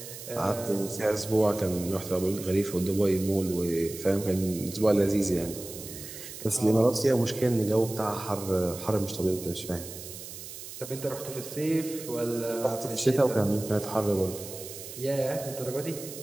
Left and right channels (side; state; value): right; noise; hiss, 12 dB below the sound